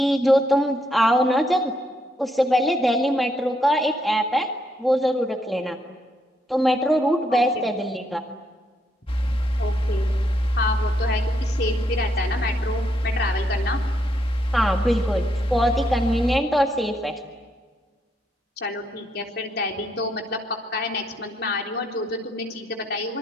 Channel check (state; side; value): normal; both; correlation 0.76